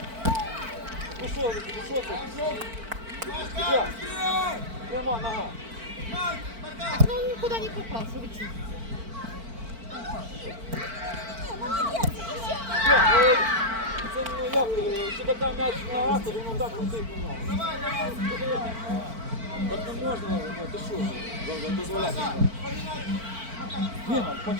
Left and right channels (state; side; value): late; left; 4.5 ms